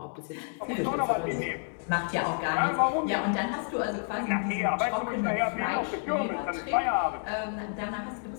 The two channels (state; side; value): silent; right; 58 dB below the other